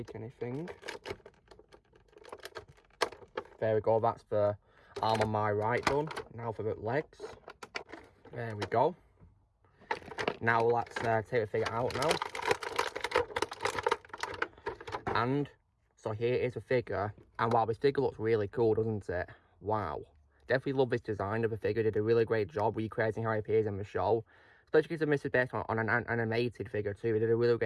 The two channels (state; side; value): identical; both; correlation 1.00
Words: anything. There we go, that's the arm on my right done. Now for the legs. There we go. Now let's take the figure out now. And so here is the figure. And wow, this figure looks really cool, doesn't it? Wow. Definitely love this design of the figure. Did a really great job recreating how he appears in the show. Especially because this is based on an animated figure too. They did a really